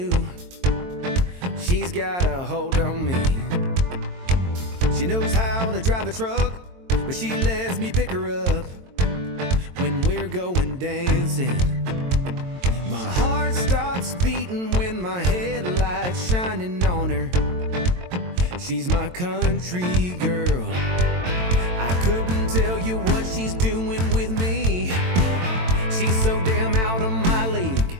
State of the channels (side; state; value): left; late; 22 ms